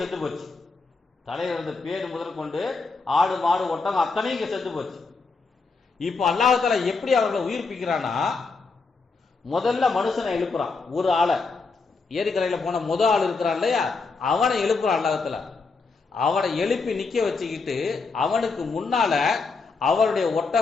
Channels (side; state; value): right; quieter; 4.3 dB